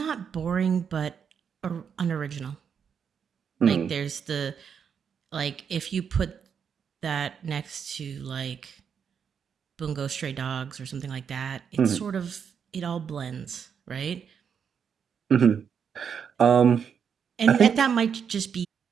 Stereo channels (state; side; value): quieter; left; 7.2 dB